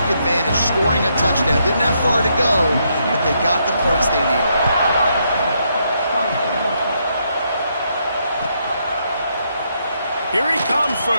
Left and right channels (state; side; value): inverted; both; correlation -0.76